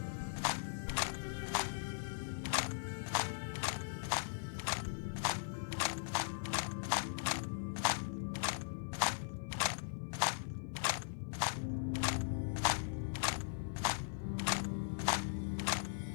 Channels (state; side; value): silent; right; digital silence